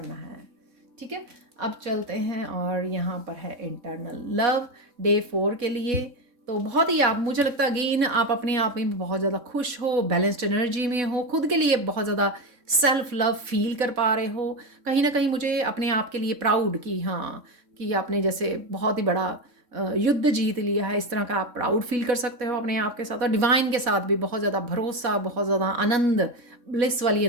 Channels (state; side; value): late; left; 3.6 ms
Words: है, ठीक है। अब चलते हैं और यहाँ पर है इंटरनल लव डे 4 के लिए। तो बहुत ही आप, मुझे लगता है अगेन आप अपने आप में बहुत ज़्यादा खुश हो, बैलेंस्ड एनर्जी में हो, खुद के लिए बहुत ज़्यादा सेल्फ लव फील कर पा रहे हो। कहीं ना कहीं मुझे अपने आप के लिए प्राउड कि हाँ, कि आपने जैसे बहुत ही बड़ा युद्ध जीत लिया है, इस तरह का आप प्राउड फील कर सकते हो अपने आप के साथ। और डिवाइन के साथ भी बहुत ज़्यादा भरोसा, बहुत ज़्यादा आनंद, ब्लिस वाली